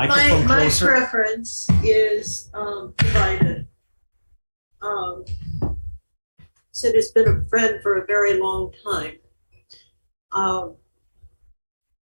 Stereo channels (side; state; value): both; inverted; correlation -1.00